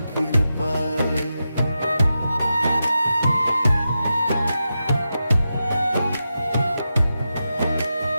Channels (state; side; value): inverted; both; correlation -0.90